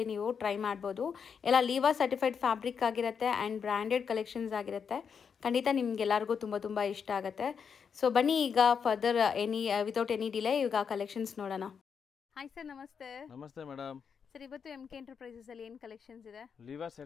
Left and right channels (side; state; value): right; quieter; 6.6 dB